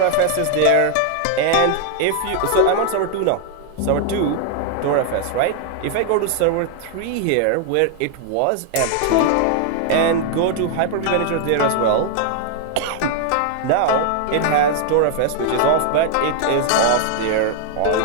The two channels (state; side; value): different; both; correlation 0.00